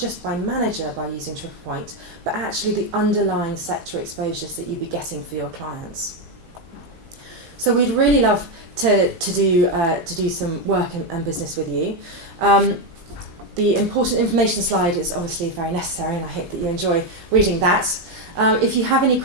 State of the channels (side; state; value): left; late; 18 ms